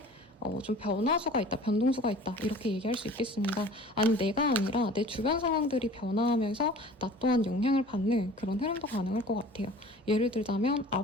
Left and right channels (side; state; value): both; normal; correlation 0.45